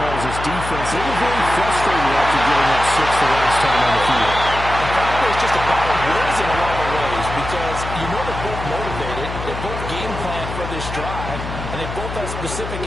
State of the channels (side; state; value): left; noise; hum, 8 dB below the sound